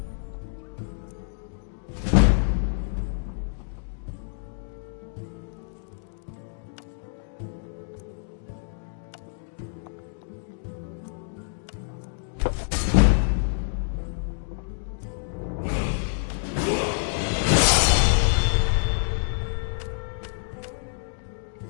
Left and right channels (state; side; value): silent; right; digital silence